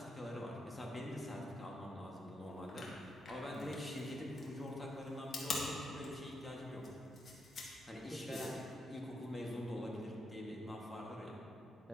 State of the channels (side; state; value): both; normal; correlation 0.81